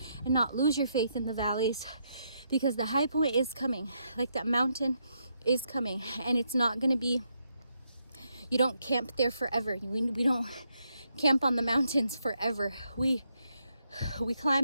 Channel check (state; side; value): inverted; both; correlation -0.78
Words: and not lose your faith in the valleys? Because the high point is coming, like that mountain is coming, and it's not going to be, you don't camp there forever. We don't camp on the mountains forever. We